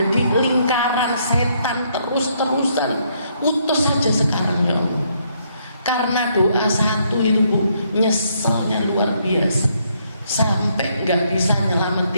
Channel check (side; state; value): both; inverted; correlation -0.72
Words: lingkaran setan terus-terusan. Putus saja sekarang ya Allah. Karena doa satu itu Bu, nyeselnya luar biasa, sampai gak bisa